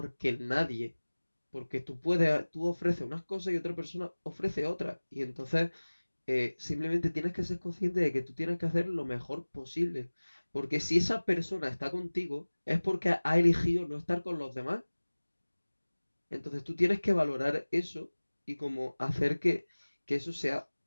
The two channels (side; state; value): both; inverted; correlation -1.00